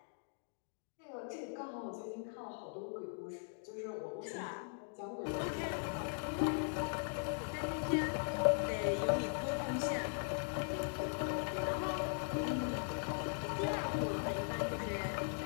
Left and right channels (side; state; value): right; silent; digital silence